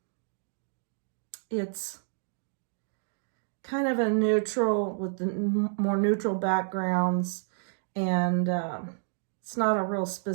it's kind of a neutral with the more neutral backgrounds, and it's not a real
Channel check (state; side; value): silent; left; digital silence